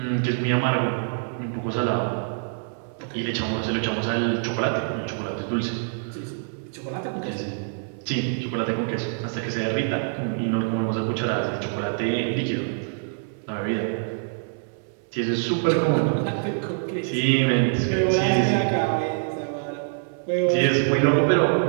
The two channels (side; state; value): left; silent; 62 dB below the other